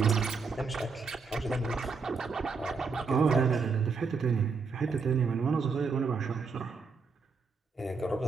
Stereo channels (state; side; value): quieter; left; 4.9 dB